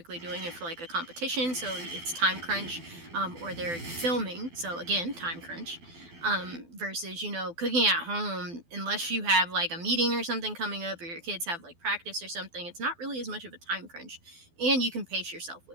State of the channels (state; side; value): late; left; 12 ms